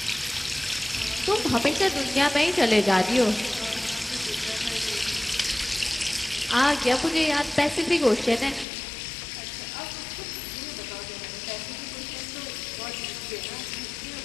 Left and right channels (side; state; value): right; drops out; at 8.7 s